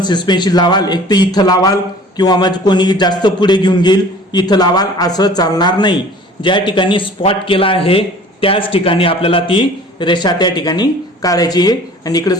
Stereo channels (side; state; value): both; normal; correlation 0.47